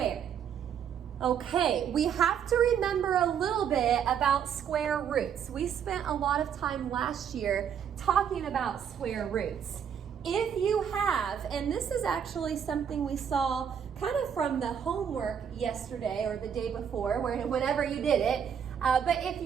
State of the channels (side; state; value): left; quieter; 8.1 dB